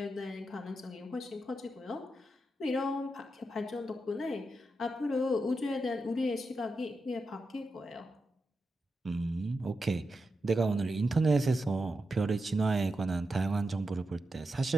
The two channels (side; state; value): both; normal; correlation 0.88